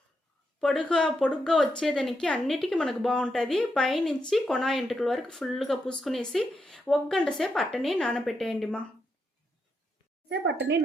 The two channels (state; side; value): normal; both; correlation 0.82